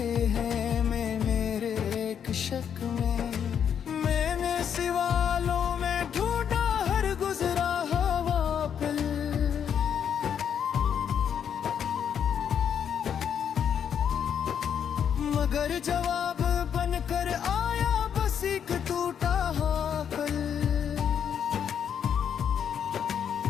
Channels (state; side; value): quieter; right; 8.3 dB